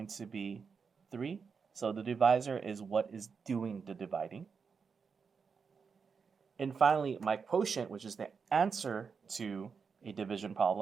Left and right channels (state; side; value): quieter; left; 5.7 dB